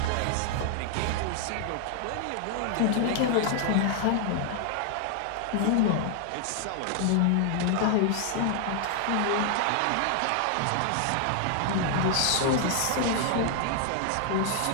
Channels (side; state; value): both; different; correlation 0.00